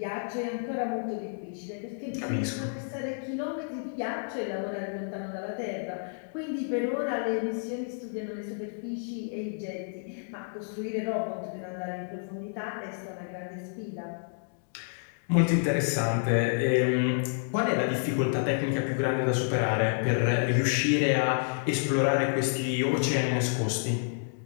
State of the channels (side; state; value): right; silent; digital silence